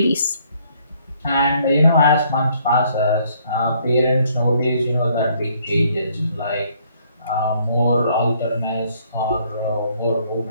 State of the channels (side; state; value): both; inverted; correlation -0.65